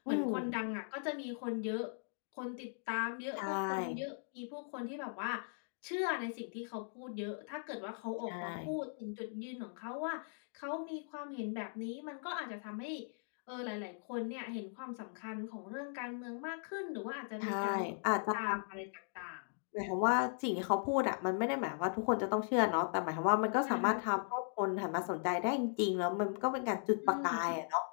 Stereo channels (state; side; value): silent; right; digital silence